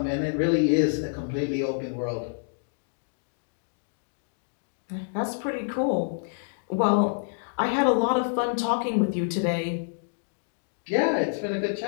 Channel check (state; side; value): silent; right; digital silence